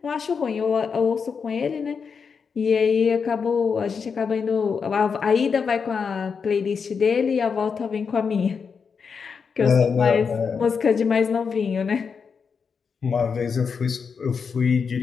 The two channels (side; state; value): right; quieter; 5.9 dB